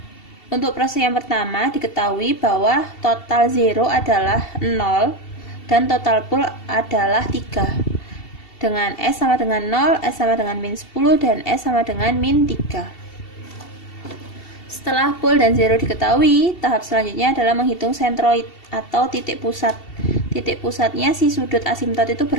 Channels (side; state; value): right; late; 2.7 ms